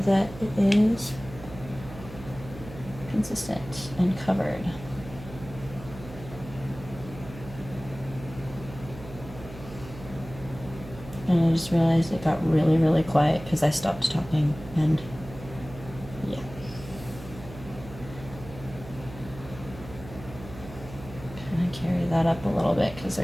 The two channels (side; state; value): right; noise; hum, 14 dB below the sound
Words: that it is consistent and covered. And just realized it got really, really quiet because I stopped talking, and yeah. Kind of carry that up a little bit because